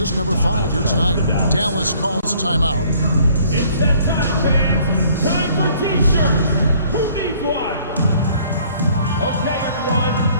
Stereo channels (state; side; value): inverted; both; correlation -0.59